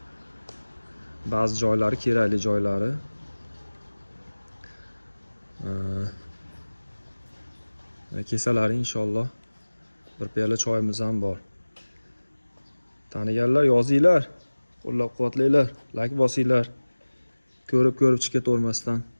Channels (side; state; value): both; inverted; correlation -1.00